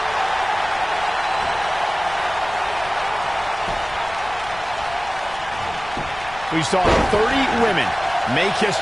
We saw 30 women make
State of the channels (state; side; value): noise; left; rumble, 18 dB below the sound